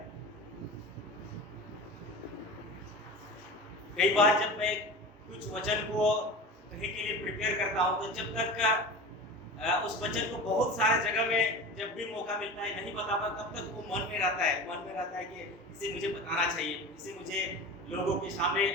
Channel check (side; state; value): both; normal; correlation 0.32